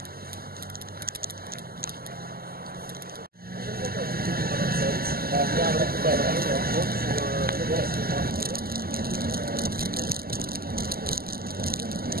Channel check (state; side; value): late; left; 0.44 ms